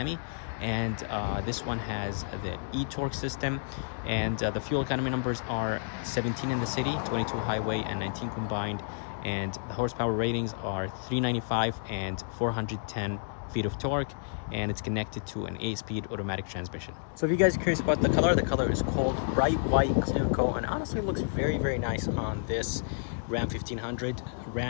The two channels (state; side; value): silent; right; digital silence